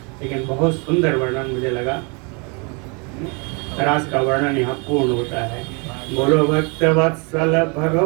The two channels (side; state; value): left; quieter; 32.6 dB